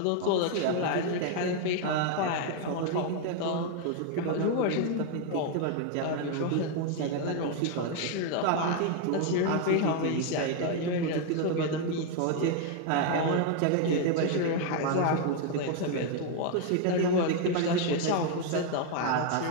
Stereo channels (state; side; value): different; both; correlation 0.00